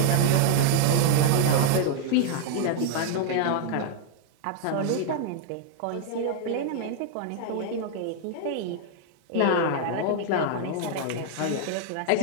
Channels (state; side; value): different; both; correlation -0.01